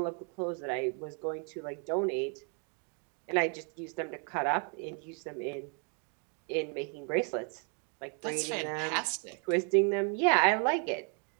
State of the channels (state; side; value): quieter; left; 39.6 dB